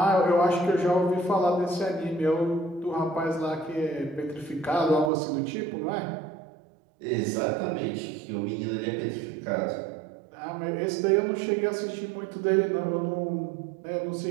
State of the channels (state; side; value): drops out; left; at 5.1 s